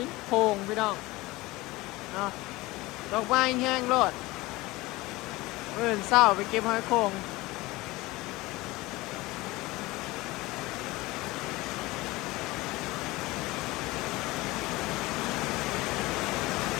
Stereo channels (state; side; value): quieter; right; 20.5 dB